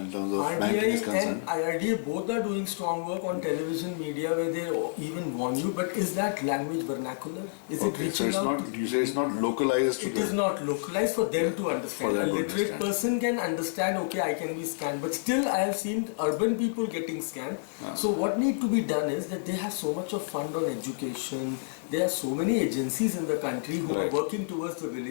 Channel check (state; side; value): silent; right; digital silence